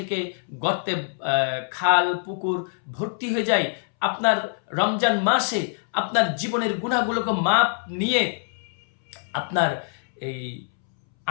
খাল পুকুর ভর্তি হয়ে যায়, আপনার রমজান মাসে আপনার জীবনের গুনাহগুলোকে মাপ নিয়ে আপনার এই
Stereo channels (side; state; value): right; silent; 62 dB below the other